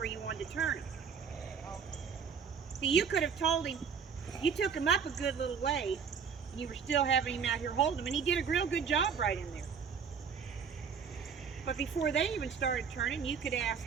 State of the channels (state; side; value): quieter; left; 6.5 dB